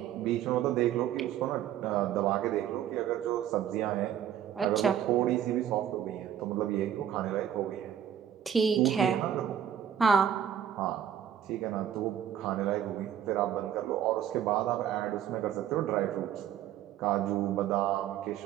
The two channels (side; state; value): left; quieter; 9.9 dB